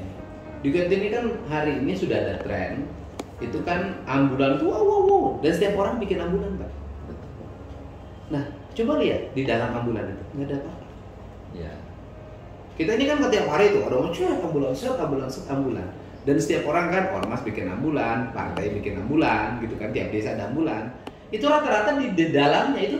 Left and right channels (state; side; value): identical; both; correlation 1.00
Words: ini. Di kita ini kan hari ini sudah ada tren itu kan ambulan tuh wow, dan setiap orang bikin ambulan Pak. Nah coba lihat di dalam ambulan itu nggak ada apa-apa. Ya. Kita ini kan setiap hari tuh ada ambulan, ambulan. Dan setiap orang kan ormas bikin ambulan, partai bikin ambulan, gitu kan tiap desa ada ambulan. Itu rata-rata di dalamnya itu